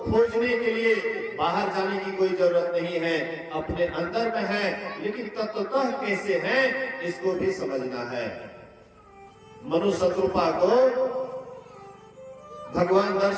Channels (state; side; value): identical; both; correlation 1.00